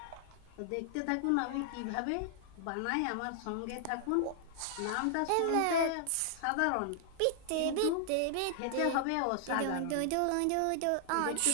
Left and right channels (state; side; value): different; both; correlation -0.01